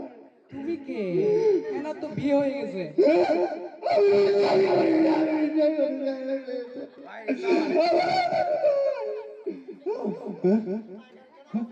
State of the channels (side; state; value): both; identical; correlation 1.00